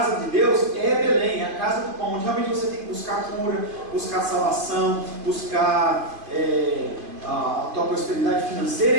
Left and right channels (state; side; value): late; left; 2.5 ms